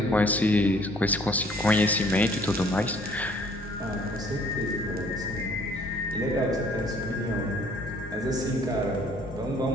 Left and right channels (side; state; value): both; normal; correlation 0.58